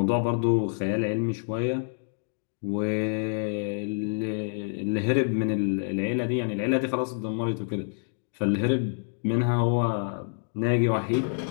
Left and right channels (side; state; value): right; silent; digital silence